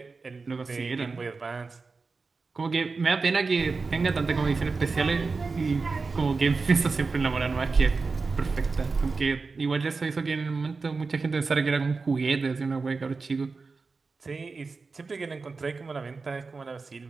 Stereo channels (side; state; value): left; quieter; 4.3 dB